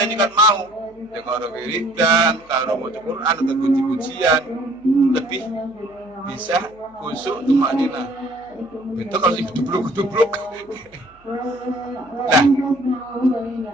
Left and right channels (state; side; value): noise; right; hum, 30 dB below the sound